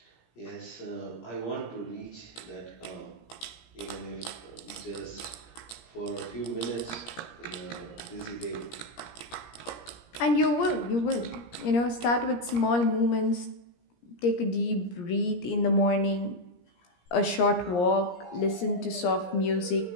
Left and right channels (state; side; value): late; right; 17 ms